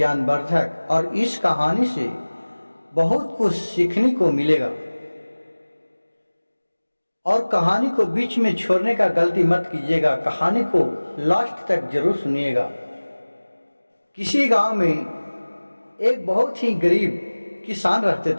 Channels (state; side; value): inverted; both; correlation -1.00